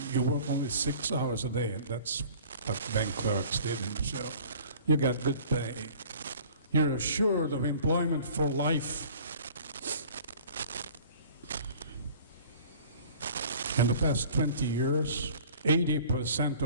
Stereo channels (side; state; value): both; inverted; correlation -0.48